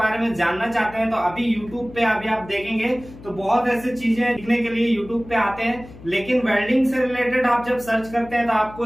में जानना चाहते हैं। तो अभी यूट्यूब पे अभी आप देखेंगे तो बहुत ऐसी चीजें सीखने के लिए यूट्यूब पे आते हैं, लेकिन वेल्डिंग से रिलेटेड आप जब सर्च करते हैं तो आपको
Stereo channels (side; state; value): left; noise; hum, 18 dB below the sound